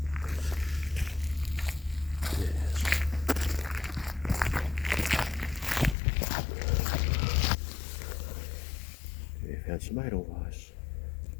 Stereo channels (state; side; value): drops out; right; at 6.0 s